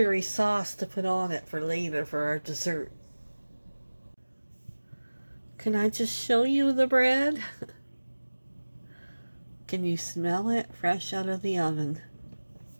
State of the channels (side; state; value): both; inverted; correlation -1.00